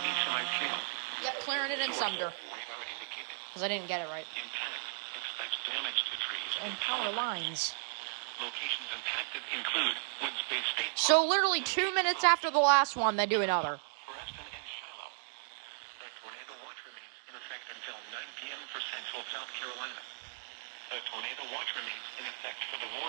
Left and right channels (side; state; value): left; silent; digital silence